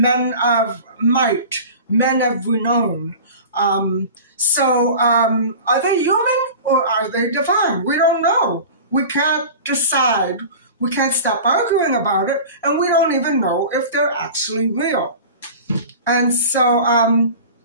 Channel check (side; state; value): both; inverted; correlation -0.36